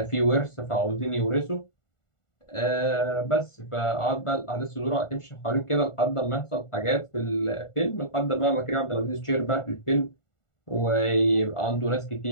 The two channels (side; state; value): right; late; 1.4 ms